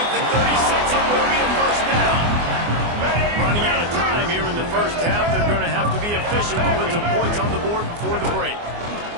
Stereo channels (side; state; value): left; late; 24 ms